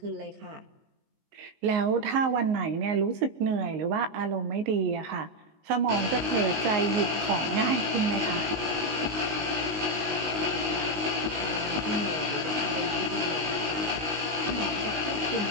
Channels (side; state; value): left; late; 19 ms